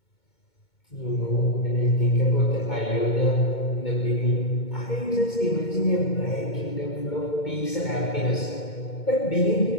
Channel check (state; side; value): late; right; 2.2 ms